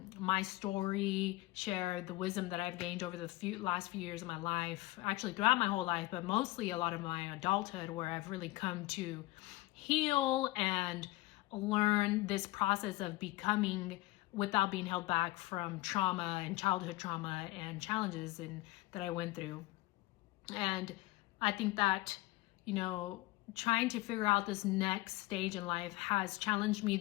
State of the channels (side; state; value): right; quieter; 19.4 dB